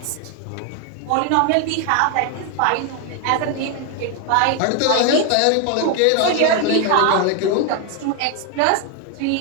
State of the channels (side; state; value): both; different; correlation 0.01